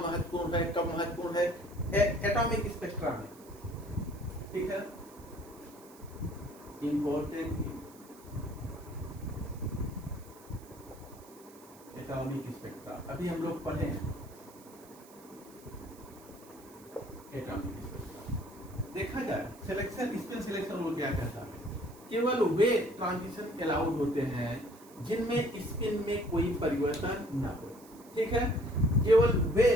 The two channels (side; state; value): right; noise; hiss, 23 dB below the sound